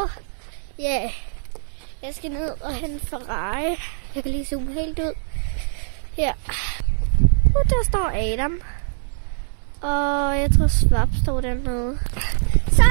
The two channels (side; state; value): left; silent; 64 dB below the other